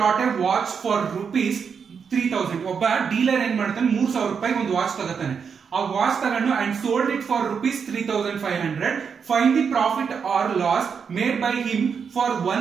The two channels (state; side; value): quieter; left; 6.4 dB